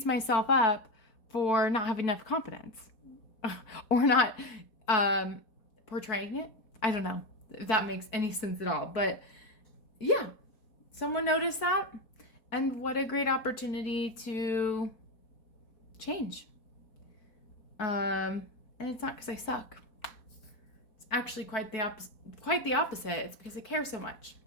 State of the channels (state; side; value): late; right; 4.2 ms